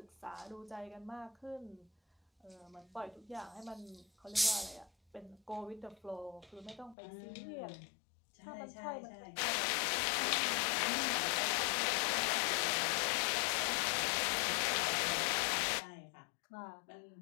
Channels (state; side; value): drops out; right; at 7.0 s